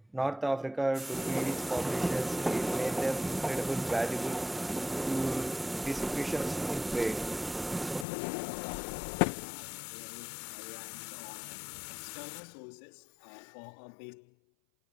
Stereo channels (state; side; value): drops out; right; at 8.1 s